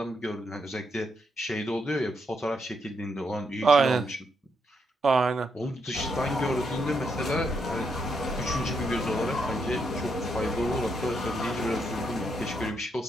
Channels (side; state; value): both; normal; correlation 0.78